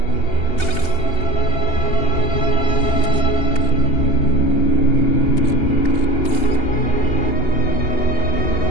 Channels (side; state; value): right; late; 2.8 ms